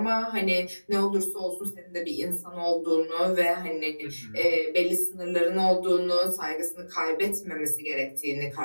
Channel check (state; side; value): inverted; both; correlation -1.00